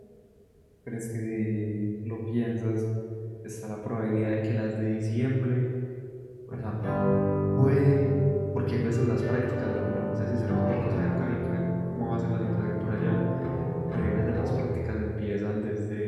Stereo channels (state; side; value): identical; both; correlation 1.00